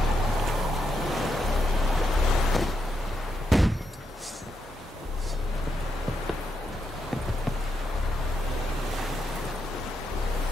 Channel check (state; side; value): normal; both; correlation 0.82